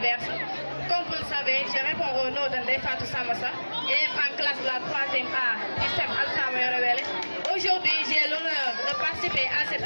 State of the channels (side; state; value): both; inverted; correlation -1.00